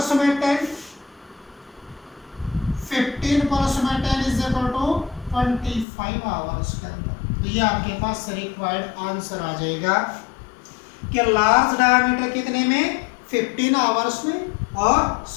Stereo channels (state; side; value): drops out; right; at 5.9 s